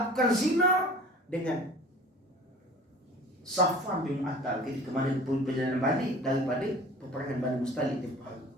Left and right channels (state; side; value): normal; both; correlation 0.43